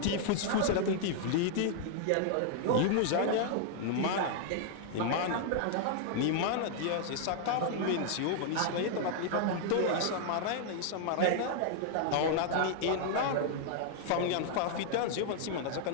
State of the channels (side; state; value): both; different; correlation -0.01